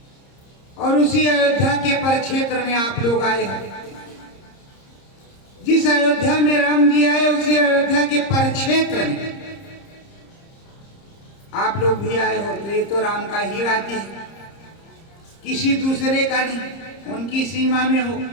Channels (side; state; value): right; late; 30 ms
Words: और उसी अयोध्या के परिक्षेत्र में आप लोग आए हैं। जिस अयोध्या में राम जी आए उसी अयोध्या के परिक्षेत्र में आप लोग भी आए हो। तो ये तो राम का ही राज्य है, किसी दूसरे का नहीं, उनकी सीमा में हो।